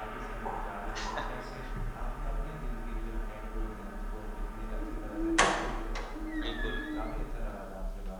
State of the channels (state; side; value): identical; both; correlation 1.00